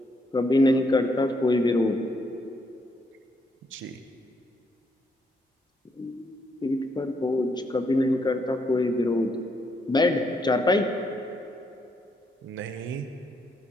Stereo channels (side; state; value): both; normal; correlation 0.75